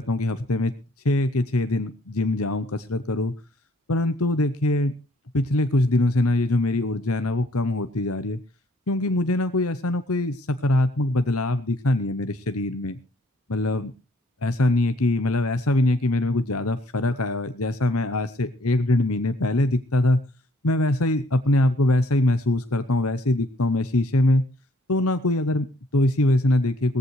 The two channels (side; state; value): both; normal; correlation 0.64